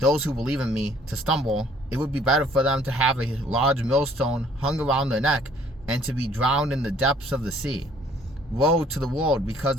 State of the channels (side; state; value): both; normal; correlation 0.59